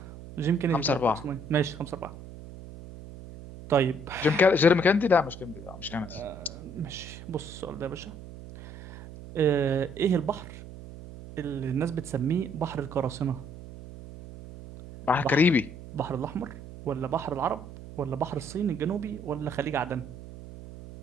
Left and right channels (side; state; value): right; noise; hum, 14 dB below the sound